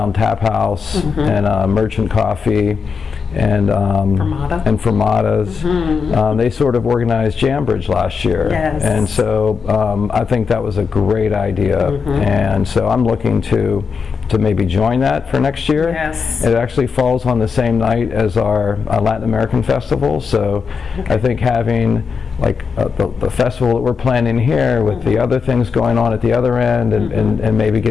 Tap House and Merchant Coffee and Fermata. and Fermata's. They sort of organized Jambridge last year, Yes. and so I think that was a great idea, and so I'm looking to maybe join that for next year. Yes. It actually falls on the same night as our Latin American festival, so I think having like the festival that we're planning here with the other things going on at the other end, and maybe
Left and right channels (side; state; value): right; quieter; 5.6 dB